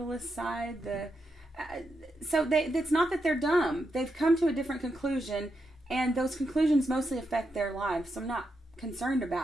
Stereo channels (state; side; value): normal; both; correlation 0.84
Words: side, So it's not that they're dumb. They've come to a different conclusion, and those conclusions mostly affect their lives. So I'm not concerned